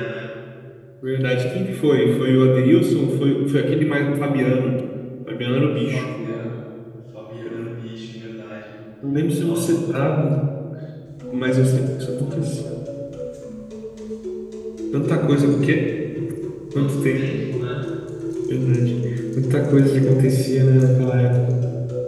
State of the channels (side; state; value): both; identical; correlation 1.00